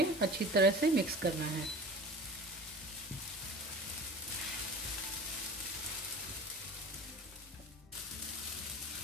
अच्छी तरह से मिक्स करना है।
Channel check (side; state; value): both; normal; correlation 0.38